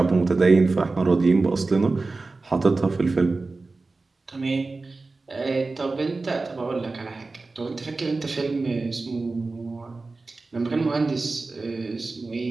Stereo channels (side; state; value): left; quieter; 3.6 dB